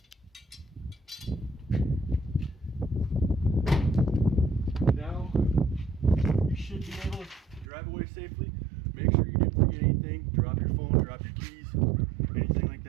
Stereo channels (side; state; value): left; drops out; at 7.7 s